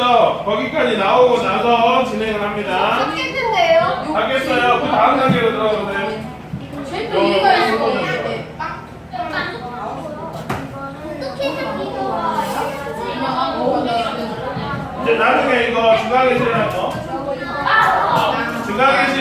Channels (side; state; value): both; identical; correlation 1.00